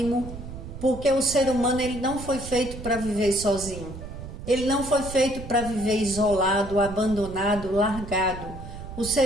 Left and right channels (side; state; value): right; noise; rumble, 11 dB below the sound